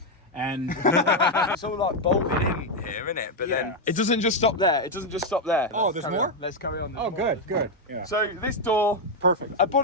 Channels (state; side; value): normal; both; correlation 0.02